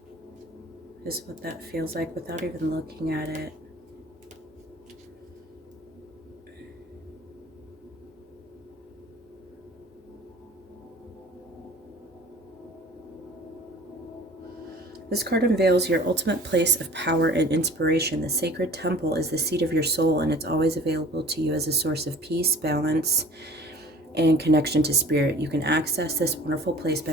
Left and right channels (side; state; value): both; normal; correlation 0.46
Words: is what that feels like without even looking at it. This card unveils your ultimate place of power and inspiration. The sacred temple is the seat of your soul, and it's always available to you as a source of peace, balance, and connection to spirit. You can access this wonderful place